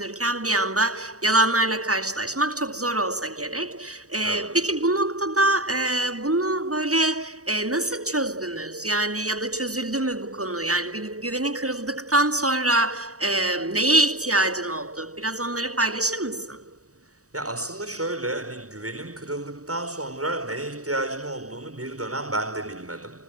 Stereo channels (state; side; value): late; left; 0.66 ms